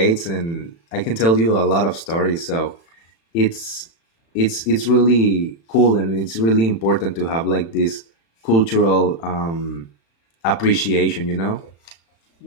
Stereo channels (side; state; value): right; late; 36 ms